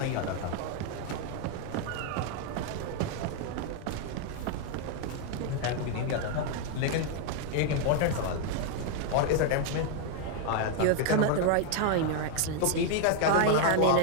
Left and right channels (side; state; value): both; different; correlation 0.00